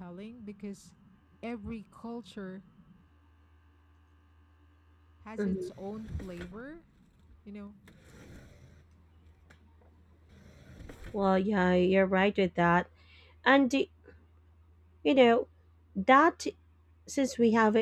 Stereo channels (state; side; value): identical; both; correlation 1.00